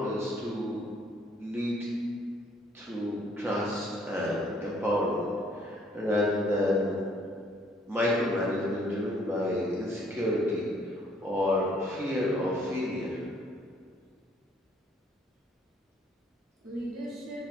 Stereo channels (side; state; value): both; normal; correlation 0.63